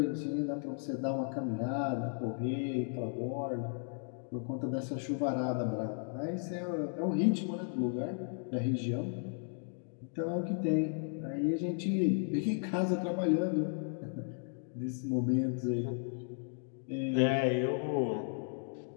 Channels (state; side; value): silent; right; 54 dB below the other